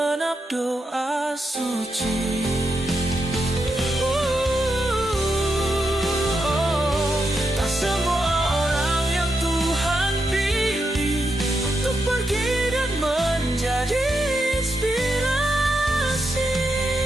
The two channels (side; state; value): both; normal; correlation 0.84